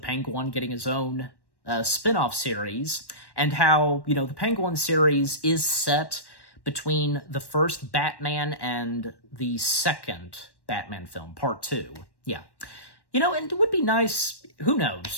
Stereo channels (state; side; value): late; right; 1.1 ms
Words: Penguin getting his own spin-off series. And how, the Penguin series is set between the first Batman and the second Batman film, Part 2. Yeah. And it would be nice, who